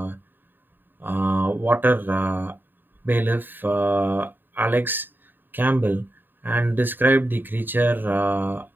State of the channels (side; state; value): left; late; 0.093 ms